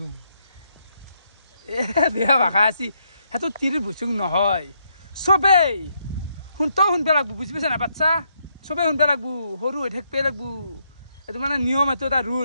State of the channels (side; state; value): both; inverted; correlation -0.76